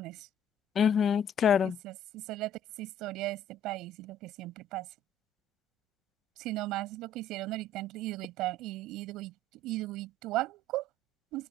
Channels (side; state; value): both; normal; correlation 0.56